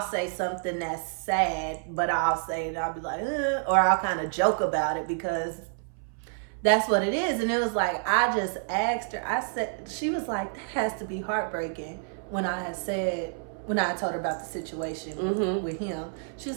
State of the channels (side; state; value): left; silent; 59 dB below the other